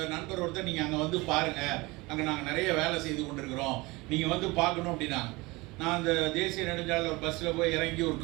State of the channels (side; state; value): left; quieter; 23.1 dB